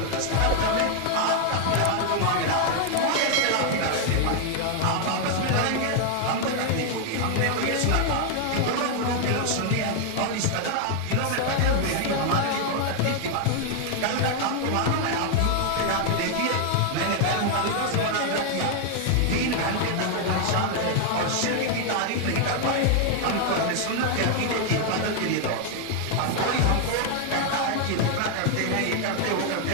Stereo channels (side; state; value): both; different; correlation 0.00